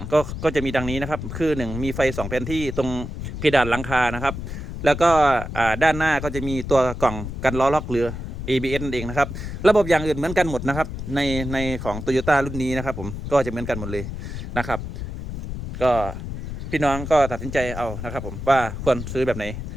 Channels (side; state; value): left; noise; rumble, 7 dB below the sound